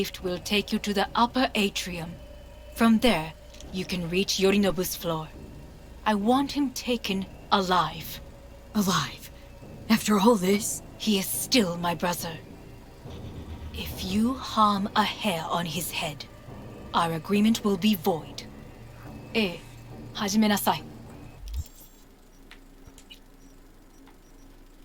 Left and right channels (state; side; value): identical; both; correlation 1.00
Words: will take you to the upper atrium. From there, you can reach Yorinobu's floor. I want him taken alive. Alive? After all this? He is still my brother. If you harm a hair on his head, our agreement will be void. Hajime nasai.